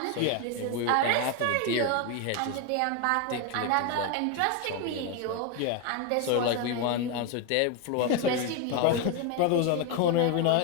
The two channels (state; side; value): different; both; correlation 0.01